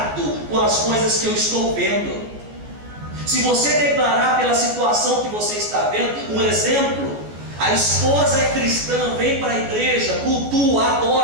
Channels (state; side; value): late; left; 14 ms